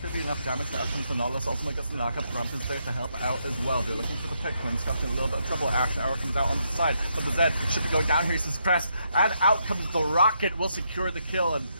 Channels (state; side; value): inverted; both; correlation -0.78